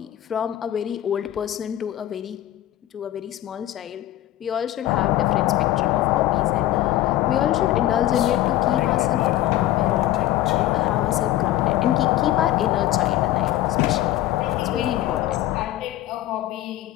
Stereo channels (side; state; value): right; quieter; 14.1 dB